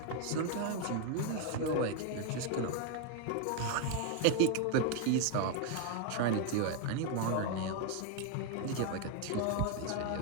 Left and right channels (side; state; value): both; different; correlation 0.01